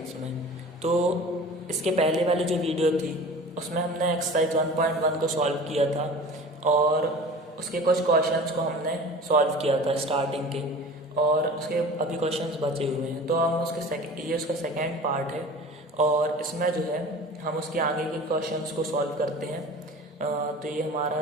में। तो इसके पहले वाली जो वीडियो थी उसमें हमने एक्सरसाइज 1.1 को सॉल्व किया था और उसके कुछ क्वेश्चंस को हमने सॉल्व किया था स्टार्टिंग के, और उसके अभी क्वेश्चंस बचे हुए हैं। तो हम ये उसका सेकेंड पार्ट है और इसमें जो है हम उसके आगे के क्वेश्चंस को सॉल्व करते हैं। तो ये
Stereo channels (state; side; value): normal; both; correlation 0.40